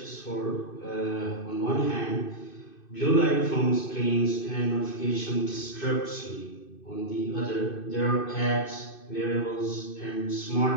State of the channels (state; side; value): late; right; 2.6 ms